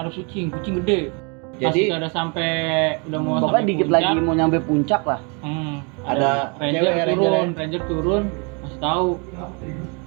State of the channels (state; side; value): quieter; left; 33.8 dB